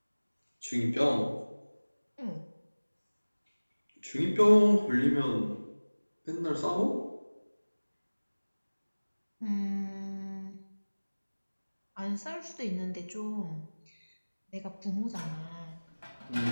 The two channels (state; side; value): inverted; both; correlation -1.00